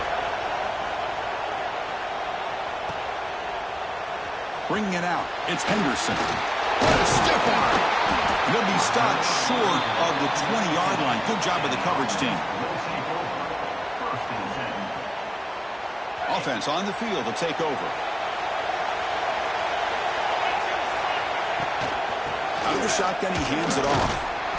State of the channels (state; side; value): identical; both; correlation 1.00